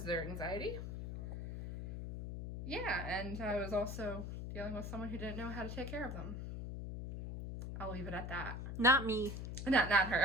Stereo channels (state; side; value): noise; left; hum, 6 dB below the sound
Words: of their anxiety. Yeah, and I was also dealing with someone who didn't know how to take care of them. I'll leave it at that. Not me. Not